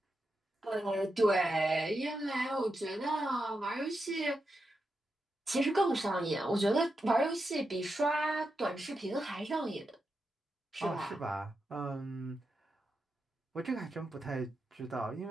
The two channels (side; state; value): both; normal; correlation 0.87